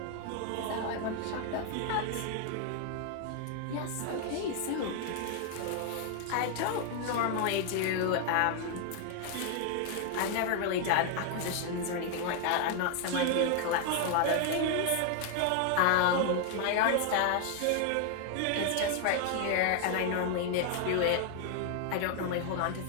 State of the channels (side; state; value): both; different; correlation 0.00